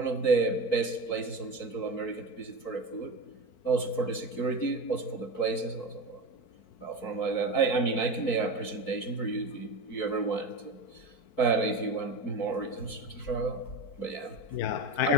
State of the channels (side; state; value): right; late; 4.5 ms